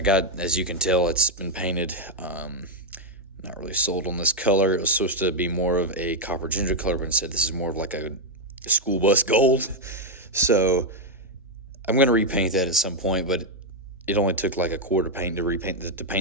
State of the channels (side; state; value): both; normal; correlation 0.00